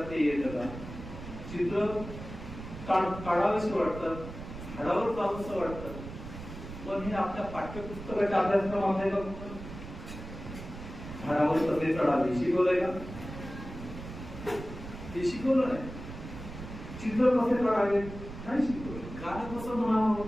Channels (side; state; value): right; noise; rumble, 11 dB below the sound